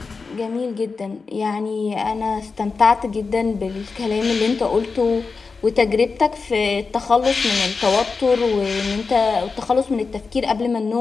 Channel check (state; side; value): quieter; right; 4.5 dB